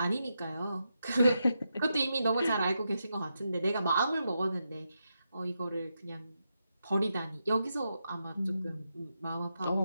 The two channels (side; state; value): both; inverted; correlation -0.85